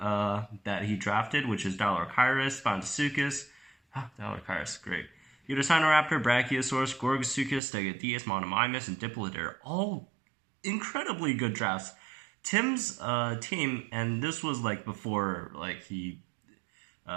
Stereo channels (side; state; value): left; drops out; at 7.6 s